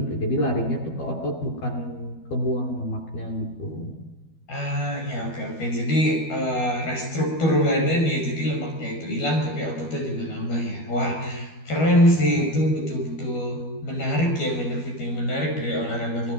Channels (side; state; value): right; late; 12 ms